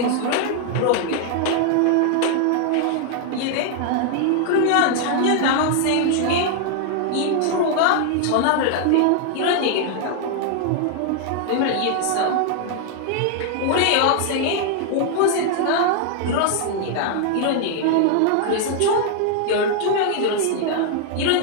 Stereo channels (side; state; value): both; different; correlation 0.00